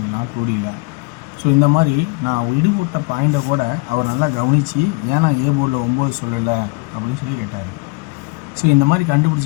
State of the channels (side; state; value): right; quieter; 27.1 dB